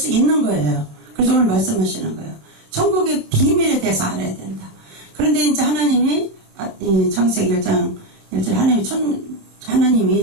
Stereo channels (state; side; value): late; left; 27 ms